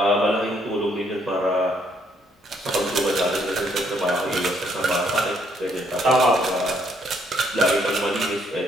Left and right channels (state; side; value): normal; both; correlation 0.70